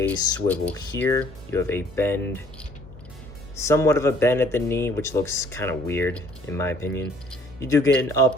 swivel here. You have a bend, somewhat of a bend at the knee, which looks kind of weird in my opinion. You do get an up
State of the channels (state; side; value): normal; both; correlation 0.59